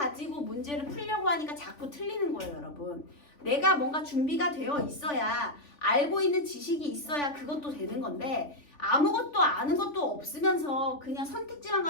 문제를 풀려고 하니까 자꾸 틀리는 거예요, 여러분. 내가 뭔가 준비가 되어 있어야 알고 있는 지식이 있어야 그것도 되는 건데 아무것도 아는 것도 없으면서 그냥 선택지만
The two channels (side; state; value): right; late; 3.5 ms